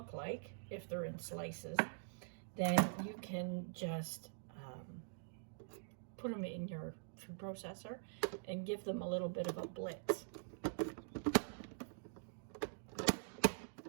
like, if they're in slices, then you can just put them in your food processor and give them a little bit of a blitz.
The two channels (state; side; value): silent; left; digital silence